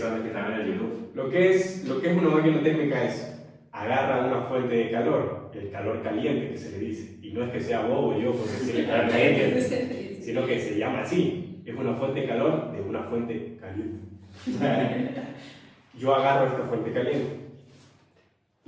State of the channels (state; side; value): identical; both; correlation 1.00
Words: los que están en el YouTube. Lo que es una máquina térmica es agarra una fuente de calor, el calor caliente que se le dice, y no es que sea bobo yo por decirle calor caliente, sino que se llama así, es una fuente de calor de una fuente caliente. Yo agarro esta fuente caliente,